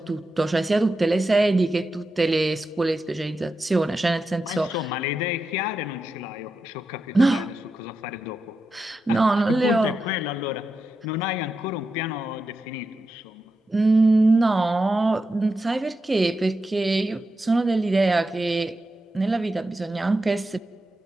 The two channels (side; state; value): both; normal; correlation 0.88